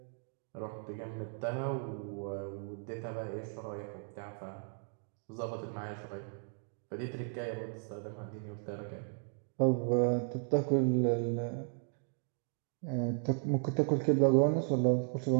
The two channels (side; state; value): left; silent; 54 dB below the other